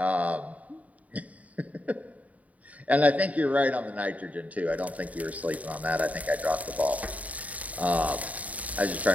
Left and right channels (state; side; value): late; left; 0.070 ms